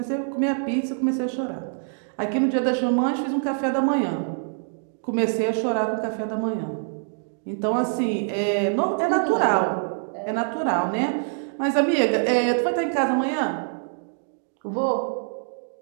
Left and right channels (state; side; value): silent; left; digital silence